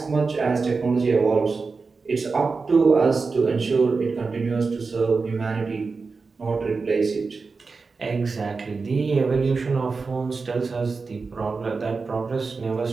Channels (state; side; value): quieter; left; 4.4 dB